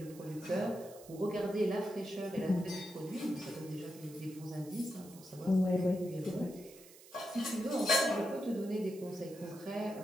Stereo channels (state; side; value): noise; right; hiss, 20 dB below the sound